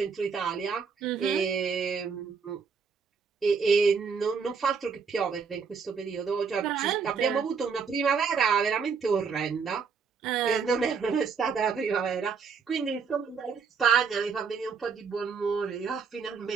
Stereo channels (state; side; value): quieter; left; 5.7 dB